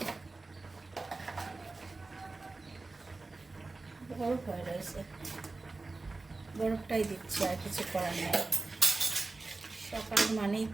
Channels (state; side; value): quieter; left; 3.5 dB